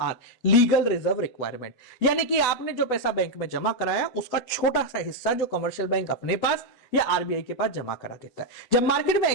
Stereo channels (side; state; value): right; late; 8.1 ms